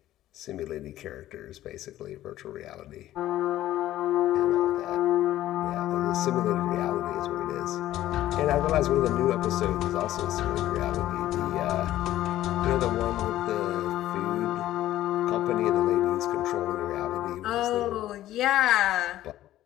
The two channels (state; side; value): quieter; right; 13.9 dB